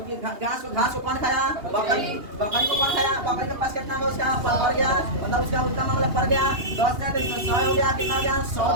तो घास को कौन खाया, बकरी, बकरी को कौन खाया, बकरी के पास कितना है, उसका बढ़ गया, मतलब उसका उसका मामला बढ़ गया, 10 का 100 हो गया, कितना हो गया 100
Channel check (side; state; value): left; late; 2.8 ms